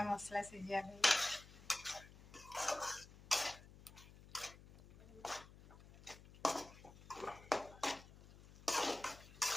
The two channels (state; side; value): noise; left; hum, 19 dB below the sound